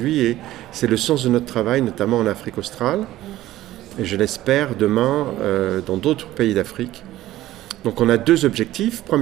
et c'est le sens de notre travail, notamment en Afrique australe, et je l'espère demain dans d'autres pays d'Afrique. Donc on a 2 objectifs.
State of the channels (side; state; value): left; quieter; 15.0 dB